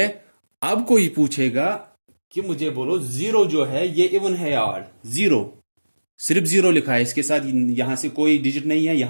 अब कोई पूछेगा कि मुझे बोलो 0 जो है ये इवन है या ऑड? 0, सिर्फ 0 लिखा है, इसके साथ यहां से कोई डिजिट नहीं है,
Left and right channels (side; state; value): both; inverted; correlation -1.00